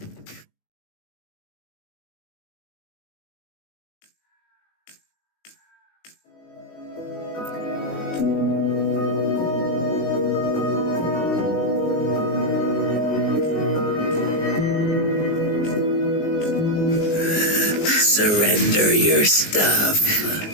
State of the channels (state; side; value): late; right; 19 ms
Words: Surrender your stuff.